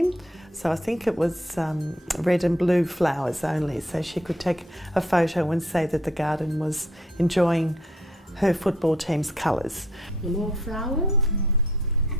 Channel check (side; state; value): both; normal; correlation 0.65